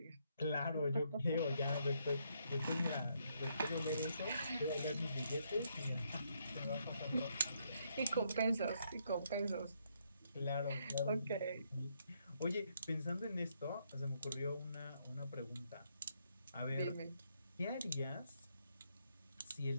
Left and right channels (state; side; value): inverted; both; correlation -0.75